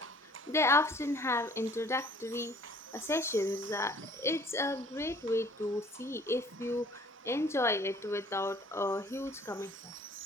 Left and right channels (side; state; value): both; normal; correlation 0.54